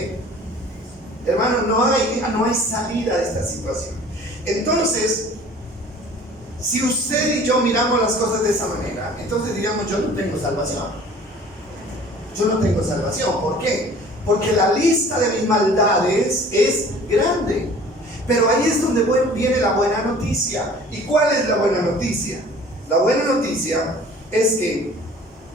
hermano, no hay salida de esta situación. Entonces, si usted y yo miramos las cosas de esa manera, entonces diríamos, yo no tengo salvación. Yo no tengo salvación. ¿Por qué? Porque la lista de mis maldades es grande. Pero ahí es donde viene la buena noticia. ¿Y cuál es la buena noticia? La buena noticia es que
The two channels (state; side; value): normal; both; correlation 0.48